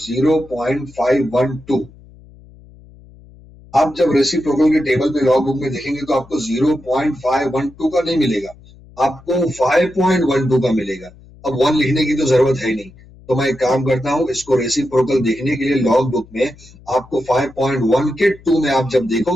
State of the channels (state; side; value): noise; left; hum, 23 dB below the sound